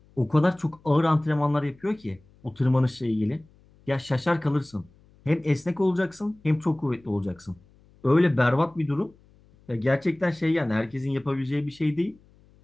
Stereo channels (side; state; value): left; noise; hum, 29 dB below the sound